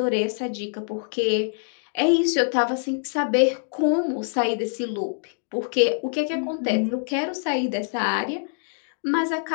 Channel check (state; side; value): silent; right; digital silence